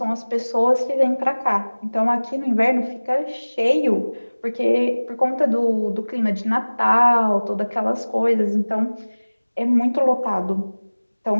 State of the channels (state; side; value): inverted; both; correlation -1.00